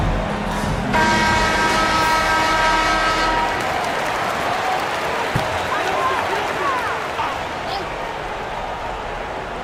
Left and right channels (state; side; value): identical; both; correlation 1.00